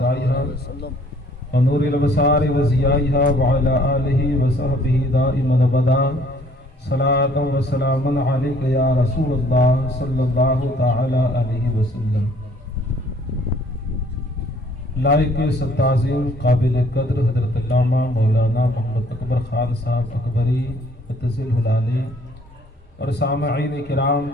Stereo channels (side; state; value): both; normal; correlation 0.59